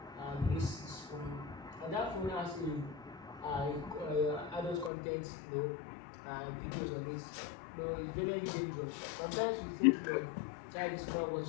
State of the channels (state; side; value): drops out; right; at 4.9 s